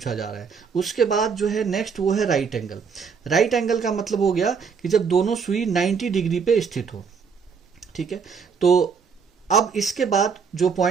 जा रहा है। उसके बाद जो है नेक्स्ट वो है राइट एंगल। राइट एंगल का मतलब हो गया कि जब दोनों सुई 90 डिग्री पे स्थित हो। ठीक है, तो अब इसके बाद जो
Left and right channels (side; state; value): left; quieter; 6.0 dB